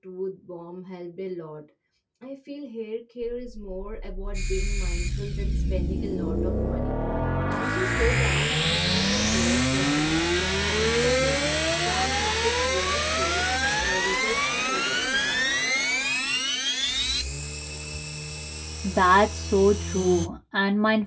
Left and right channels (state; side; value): identical; both; correlation 1.00